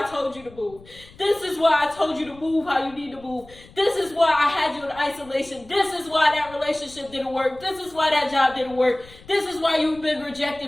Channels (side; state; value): left; noise; rumble, 22 dB below the sound